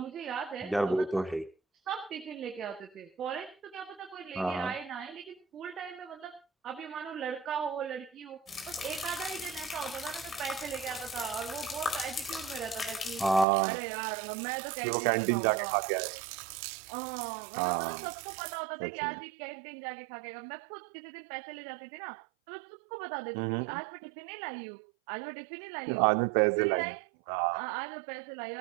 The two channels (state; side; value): drops out; left; at 13.5 s